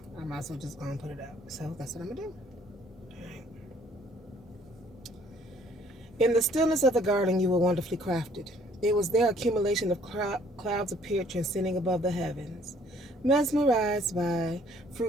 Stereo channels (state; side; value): normal; both; correlation 0.60